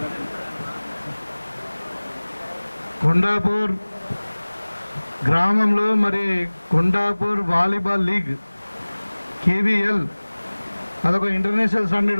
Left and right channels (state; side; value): inverted; both; correlation -1.00